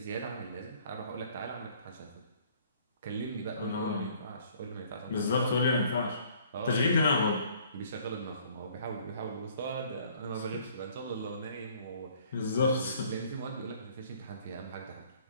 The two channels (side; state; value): both; inverted; correlation -0.58